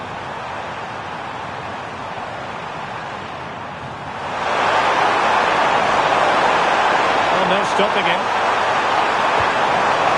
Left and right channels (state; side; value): identical; both; correlation 1.00